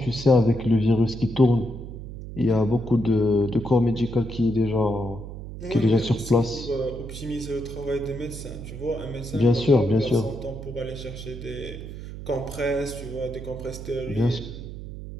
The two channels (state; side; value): noise; right; hum, 10 dB below the sound